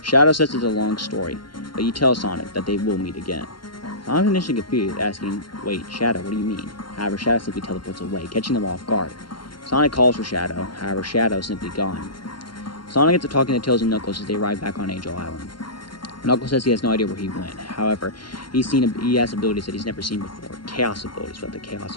Shadow says it's a long story, but you tell Sonic that they will meet again. Sonic's initially confused, asking, wait, Shadow, what do you mean? However, Shadow simply teleports away, catching them off guard. Sonic calls for Shadow, however, Shadow is simply gone. Sonic gets to talking to Tails and Knuckles as they arrive back on Angel Island. Knuckles says he has no idea where he went. However, he has abilities that he's never seen before. Chaos abilities with the Chaos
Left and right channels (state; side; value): late; right; 0.72 ms